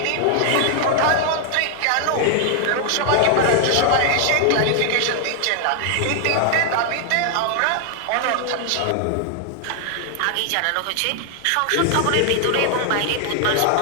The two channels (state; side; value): different; both; correlation 0.00